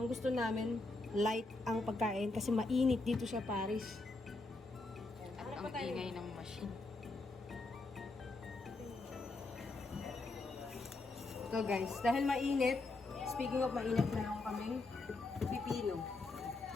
gusto namin light ang pagkain kasi mainit dito sa Paris. At ang ingay ng machine. So guys, dahil mainit, speaking of mainit, meron kaming pipino.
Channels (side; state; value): right; quieter; 3.2 dB